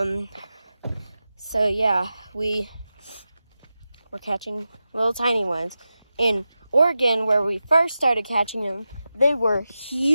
So yeah, we're catching little tiny ones. In Oregon, where we first started catching them, they were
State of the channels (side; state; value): both; inverted; correlation -0.93